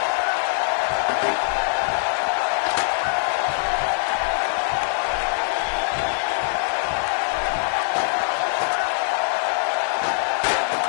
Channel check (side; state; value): right; silent; 64 dB below the other